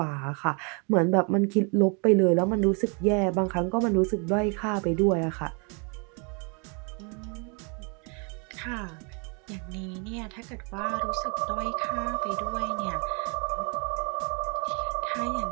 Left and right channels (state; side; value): quieter; left; 35.1 dB